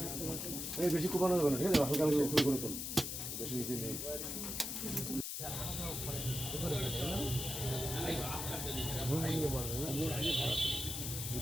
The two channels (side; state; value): left; noise; hiss, 4 dB below the sound